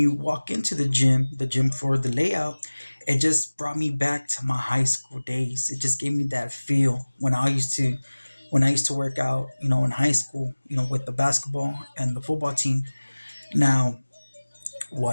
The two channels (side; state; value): both; inverted; correlation -1.00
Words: walk into the gym for the layout, it just brought me back to my high school days. It just gave me that feel when I used to work out, in high school, with the basketball and the football team. Now,